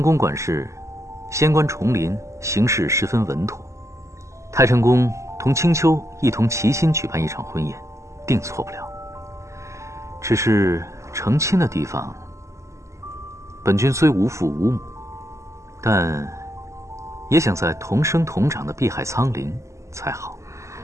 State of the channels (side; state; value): left; late; 0.14 ms